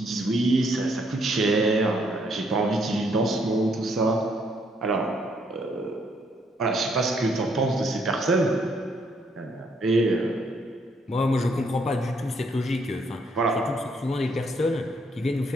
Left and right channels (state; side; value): normal; both; correlation 0.70